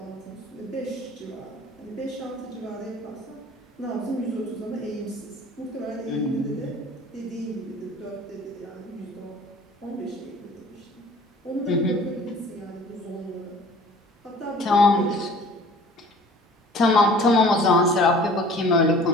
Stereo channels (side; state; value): both; normal; correlation 0.47